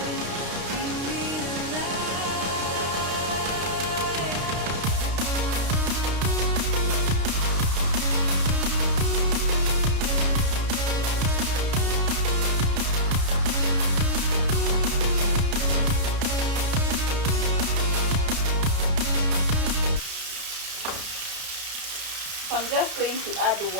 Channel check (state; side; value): late; left; 32 ms